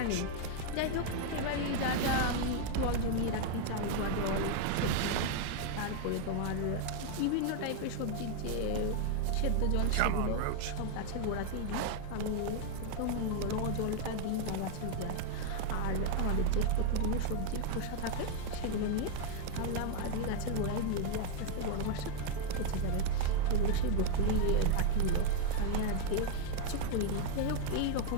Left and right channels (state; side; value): different; both; correlation 0.00